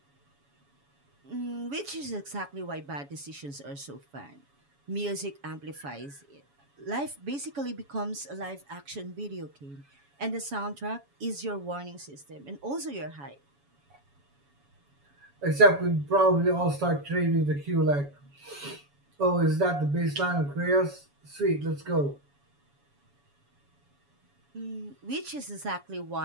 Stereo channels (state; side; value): late; left; 7.1 ms